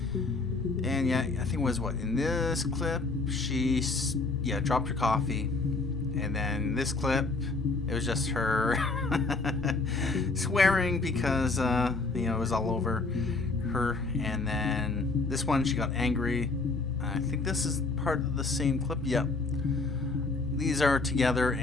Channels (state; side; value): quieter; right; 3.6 dB